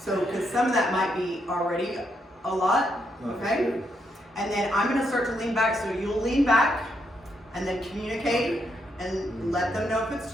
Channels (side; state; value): both; normal; correlation 0.78